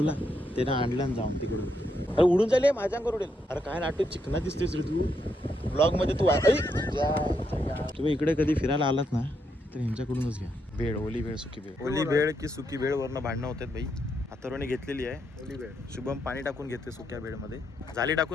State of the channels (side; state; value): both; normal; correlation 0.79